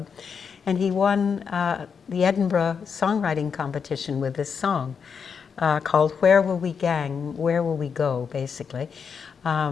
and he won the Edinburgh songwriting competition with this song called Where Will We Gang, Where Will We Go, basically.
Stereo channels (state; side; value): quieter; right; 6.4 dB